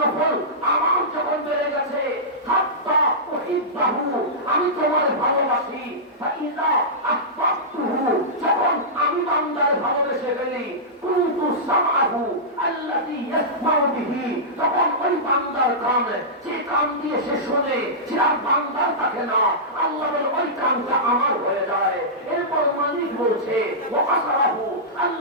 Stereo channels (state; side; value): normal; both; correlation -0.15